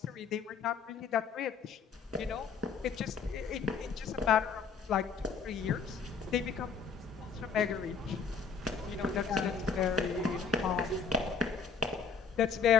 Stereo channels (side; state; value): right; quieter; 5.8 dB